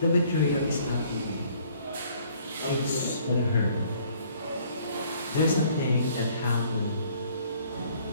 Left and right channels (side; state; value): both; inverted; correlation -0.60